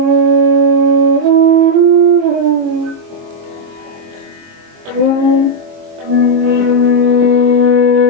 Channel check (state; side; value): late; left; 21 ms